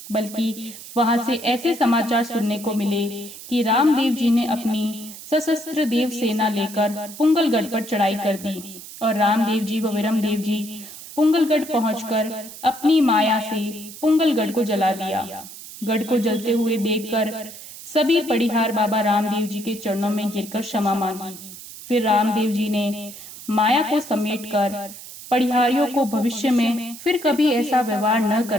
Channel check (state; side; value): noise; right; hiss, 14 dB below the sound